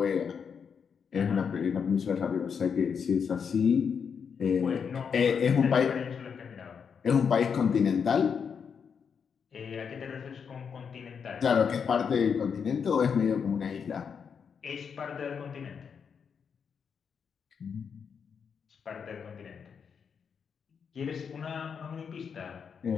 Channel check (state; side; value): quieter; right; 6.6 dB